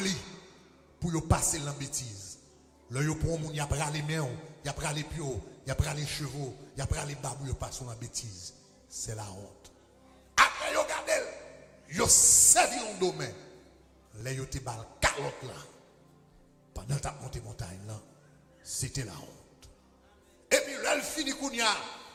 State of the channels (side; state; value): both; identical; correlation 1.00